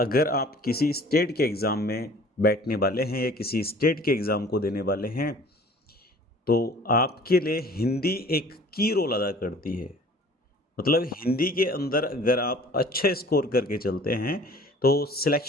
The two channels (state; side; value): normal; both; correlation 0.49